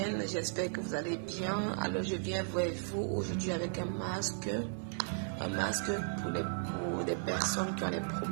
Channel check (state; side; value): silent; left; digital silence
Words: j'espère que vous allez bien. Alors je viens vers vous aujourd'hui avec un masque pour des personnes qui ont des